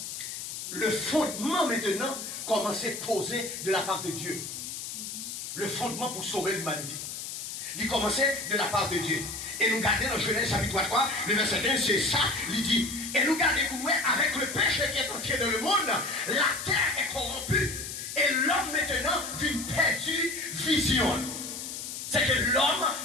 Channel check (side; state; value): left; noise; hiss, 7 dB below the sound